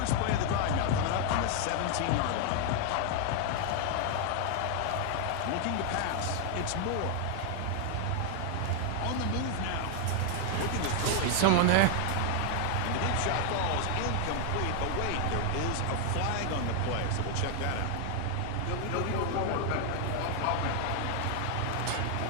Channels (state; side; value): different; both; correlation 0.00